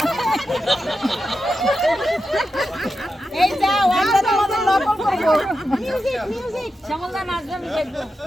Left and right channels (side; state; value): both; normal; correlation 0.89